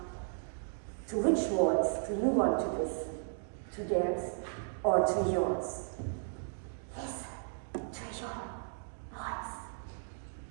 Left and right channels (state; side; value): silent; left; digital silence